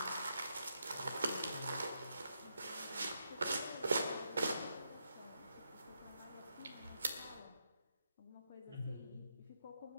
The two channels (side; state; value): both; inverted; correlation -0.81